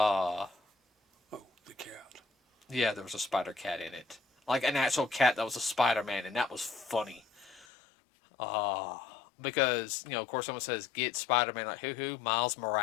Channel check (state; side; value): drops out; right; at 7.7 s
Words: the cat. Yeah, there was a spider cat in it. Like an actual cat that was a Spider-Man, and that was funny. because of course, someone says get Spider-Man, like who? Miles